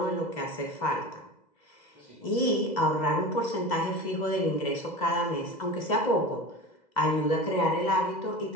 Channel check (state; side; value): late; right; 2.0 ms